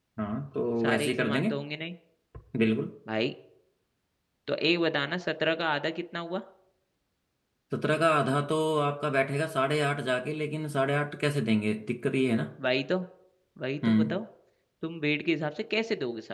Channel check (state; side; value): identical; both; correlation 1.00